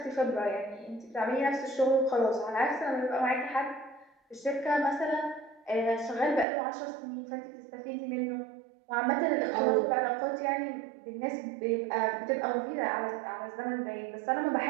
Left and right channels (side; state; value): left; drops out; at 6.5 s